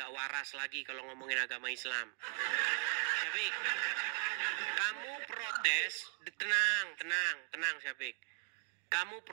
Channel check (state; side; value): silent; left; 52 dB below the other